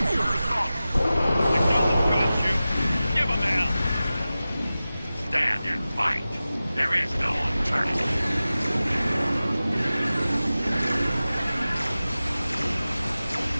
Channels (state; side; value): inverted; both; correlation -0.95